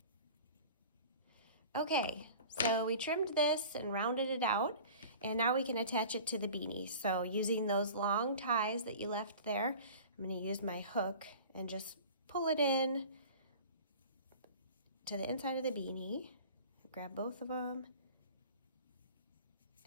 Okay, so we trimmed this and rounded it out, and now we can attach it to the beanie. So using those long ties that you left there, I'm going to use my hook and just pull it in to the inside of the beanie. Grab both of them,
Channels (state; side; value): inverted; both; correlation -0.41